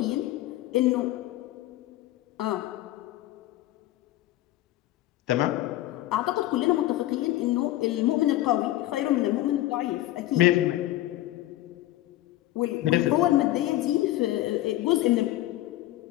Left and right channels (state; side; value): quieter; right; 15.5 dB